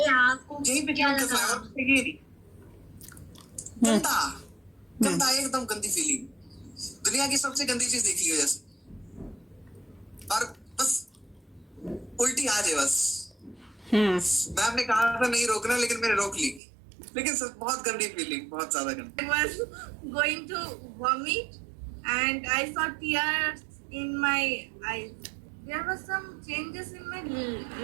पे क्या गंदा गंदा एकदम गंदी फीलिंग, दुनिया की सबसे गंदी चीज देखी है जैसे, और बस उल्टी आ जाए बस। मैं आपने कहा था नहीं रोकना, लेकिन मैंने रोक ली। लेकिन बहुत गंदी फीलिंग, बहुत ज्यादा गंदी। I was going to vomit and I saw tears in my eyes. There were some changes in my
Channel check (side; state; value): left; drops out; at 16.6 s